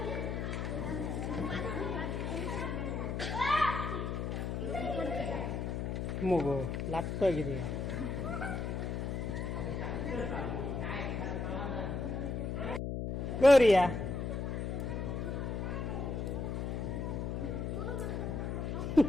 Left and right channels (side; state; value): left; noise; hum, 2 dB below the sound